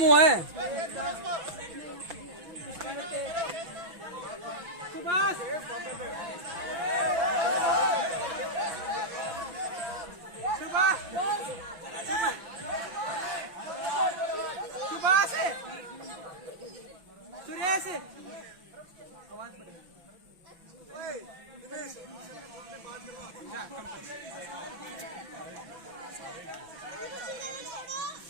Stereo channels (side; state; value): left; late; 5.7 ms